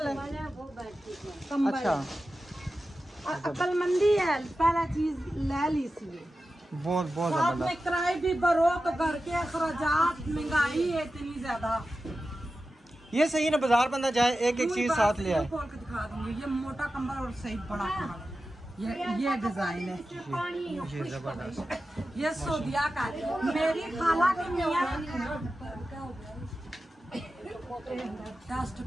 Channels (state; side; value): normal; both; correlation 0.93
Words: है। वो बैठती है। कंबल। अच्छा, अक्लमंदी है, पहला चीज ले ली सी। बहुत बहुत साथ जबरदस्त। में किराए भी भरो तो घर के अखराजात, महंगाई है इतनी ज्यादा। ये सही ना, बाजार बंदा जाए एक एक चीज साथ ले आए। खोल के दिखा दूंगी, ये मोटा कंबल और सही बड़ा कंबल, ये डिजाइन है, ये जबरदस्त। ये सोदिया का है। मेरी खाला की मियाँ डस्ट